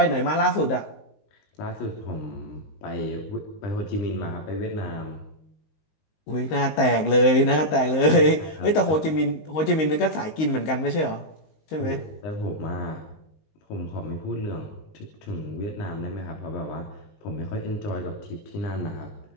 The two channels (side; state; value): right; late; 19 ms